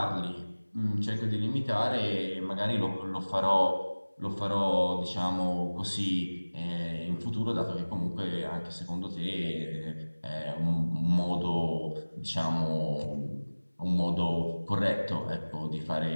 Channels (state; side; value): inverted; both; correlation -1.00